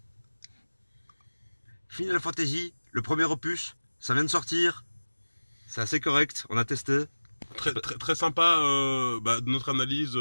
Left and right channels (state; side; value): inverted; both; correlation -1.00